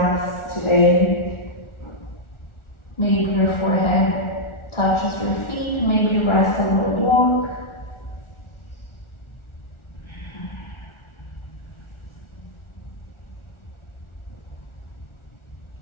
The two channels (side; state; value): right; late; 1.4 ms